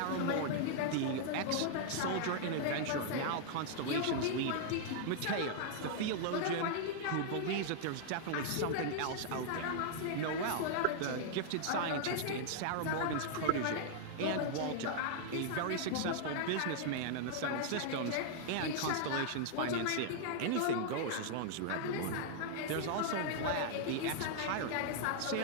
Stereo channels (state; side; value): different; both; correlation -0.01